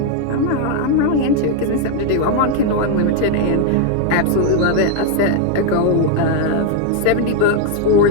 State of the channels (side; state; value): both; different; correlation 0.01